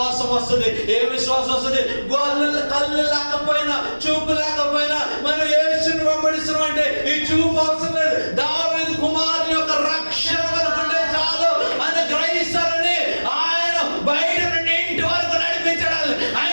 వస్తుంది. ఏ విశ్వాసం వస్తుంది? కళ్ళు లేకపోయినా చూపు లేకపోయినా మనం యేసుని వెంబడిస్తున్నాం అంటే ఈ చూపు అవసరం లేదు. దావీదు కుమారుని యొక్క రక్షణ అనుకుంటే చాలు అని గ్రహిస్తారని ఆయన బయట నుండి ఇంటి వరకు నడిపించడాలి.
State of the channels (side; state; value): both; inverted; correlation -1.00